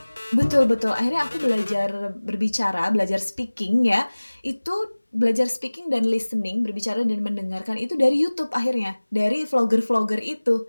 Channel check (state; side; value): inverted; both; correlation -1.00